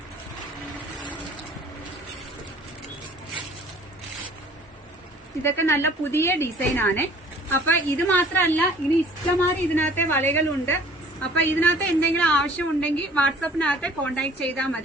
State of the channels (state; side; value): normal; both; correlation 0.51